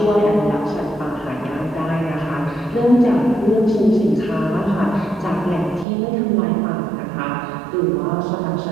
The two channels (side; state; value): left; drops out; at 5.9 s